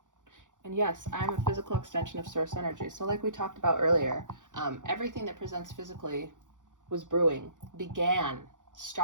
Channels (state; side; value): late; left; 0.87 ms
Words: And yes, I'm a physical extension of source energy. So like we talked about earlier, everything that presents physically was brewing,